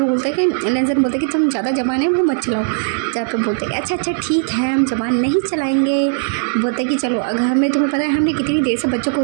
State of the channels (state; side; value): silent; left; digital silence